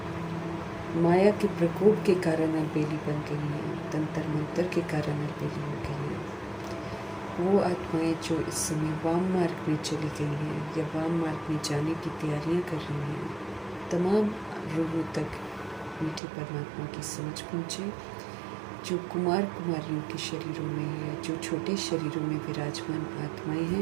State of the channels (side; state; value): left; drops out; at 16.2 s